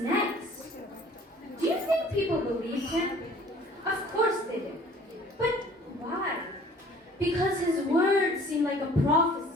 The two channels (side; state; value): both; normal; correlation 0.52